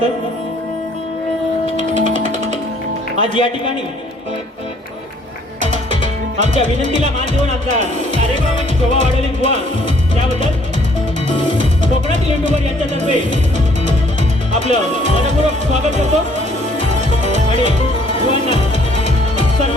आज या ठिकाणी आमच्या विनंतीला मान देऊन आमचा कार्यक्रमाची शोभा वाढवली बुवा, त्याबद्दल कोकणातील युट्यूबर यांच्यातर्फे आपलं मनपूर्वक स्वागत करतो आणि बुवांना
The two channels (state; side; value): normal; both; correlation 0.62